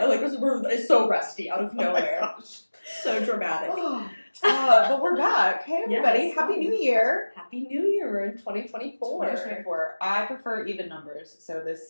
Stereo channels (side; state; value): both; inverted; correlation -1.00